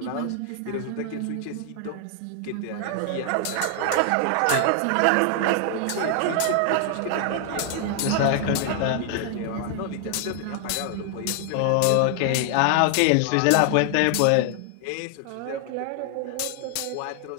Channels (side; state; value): both; different; correlation 0.00